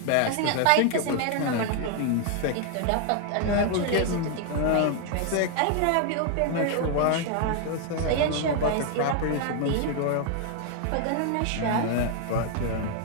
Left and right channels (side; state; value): both; different; correlation 0.00